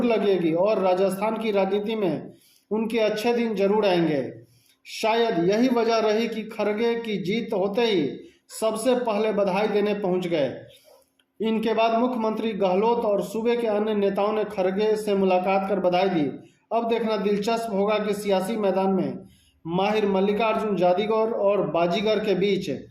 लगेगी और राजस्थान की राजनीति में उनके अच्छे दिन जरूर आएंगे। शायद यही वजह रही कि खड़गे की जीत होते ही सबसे पहले बधाई देने पहुंच गए। इनके बाद मुख्यमंत्री गहलोत और सूबे के अन्य नेताओं ने खड़गे से मुलाकात कर बधाई दी। अब देखना दिलचस्प होगा कि सियासी मैदान में माहिर मल्लिकार्जुन जादूगर और बाजीगर के बीच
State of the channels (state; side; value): identical; both; correlation 1.00